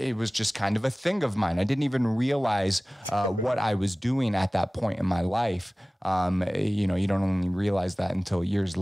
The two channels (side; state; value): both; normal; correlation 0.98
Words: was just kind of a thing of mine. I didn't even realize what I was doing at that point in my life. You don't only realize that until years